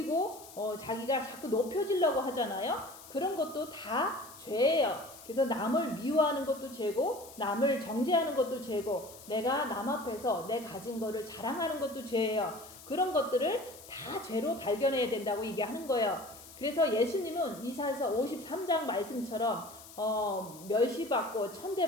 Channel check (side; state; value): left; noise; hiss, 18 dB below the sound